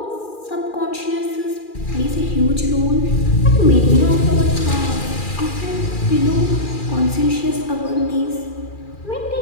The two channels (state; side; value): late; right; 2.4 ms